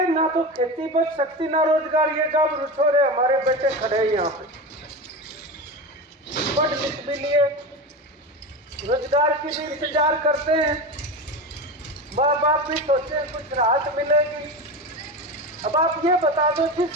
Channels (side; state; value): both; normal; correlation 0.23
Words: ना तो खेती बच सकती ना रोजगार। ये जब रुछोरे हमारे बेटे खड़े हैं यहाँ पे, पढ़ लिख भी लिए, रोजगार की भी इंतजार करते हैं, माँ बाप भी सोचते कुछ राहत मिलेगी। अब आप ये बता दो